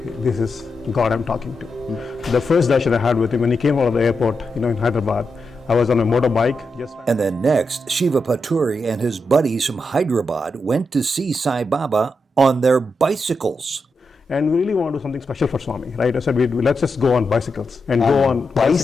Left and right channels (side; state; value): both; normal; correlation 0.86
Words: is God I'm talking to. The first darshan I had with him, when he came out of the airport, in Hyderabad, I was on a motorbike. And then next, Siva Paturi and his buddies from Hyderabad went to see Sai Baba on their bicycles. And we really want to do something special for Swami, right? I said, let's just go on bicycles and go on